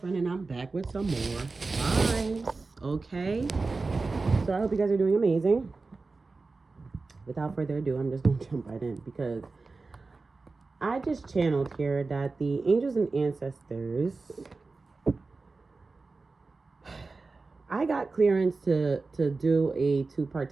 friend and I'm back with some more vibes. Okay, so I hope you guys are doing amazing. Without further ado, I'm just going to jump right in because I just channeled here that the angels and ancestors, I got clearance to do a two-part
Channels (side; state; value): left; quieter; 3.8 dB